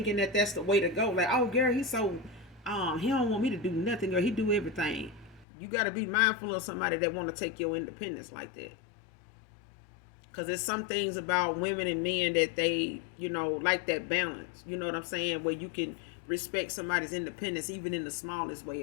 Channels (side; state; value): right; drops out; at 5.5 s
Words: that that's the way to go. Like, oh, girl, he's so he don't want me to do nothing, or he do everything. You got to be mindful of somebody that want to take your independence like that. Because there's some things about women and men that they, like that balance. You know what I'm saying? Where you can respect somebody's independence even in the smallest